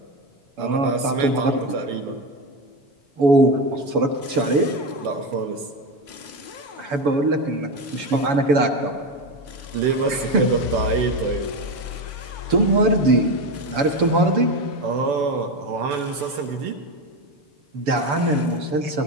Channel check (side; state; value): left; late; 7.0 ms